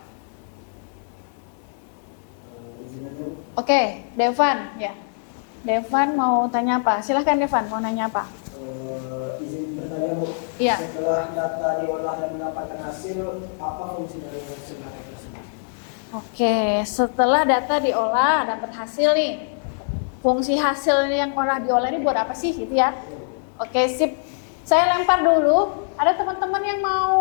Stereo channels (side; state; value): right; silent; digital silence